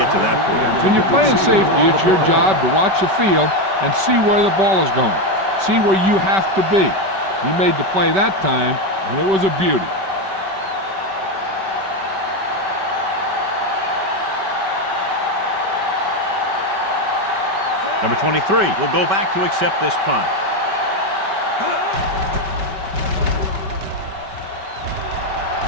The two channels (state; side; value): late; left; 5.2 ms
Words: to that point. When you're playing safety, it's your job to watch the field and see where the ball is going. See where you have to be. He made the play that time, and it was a beauty. Number 23 will go back to accept this punt.